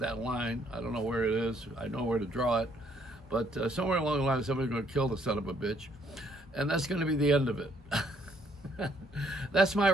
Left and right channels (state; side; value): normal; both; correlation 0.67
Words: line, I don't know where it is. I know where to draw it. But somewhere along the line, somebody's going to kill the son of a bitch. And that's going to be the end of it. That's my